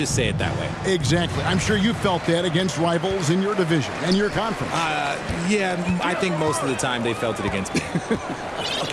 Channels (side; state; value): both; identical; correlation 1.00